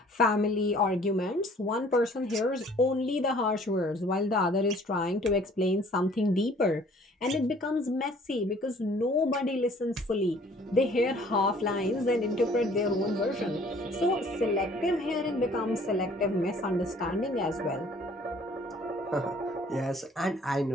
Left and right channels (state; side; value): normal; both; correlation 0.55